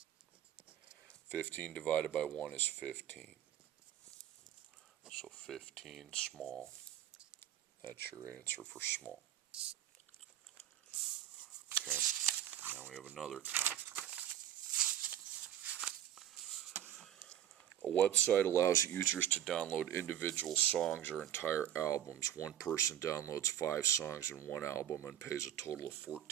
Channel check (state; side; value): quieter; left; 11.4 dB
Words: 15 divided by 1 is 15. So 15 small. That's your answer for small. we have another column. A website allows users to download individual songs or entire albums. One person downloads 5 songs in one album and pays a total of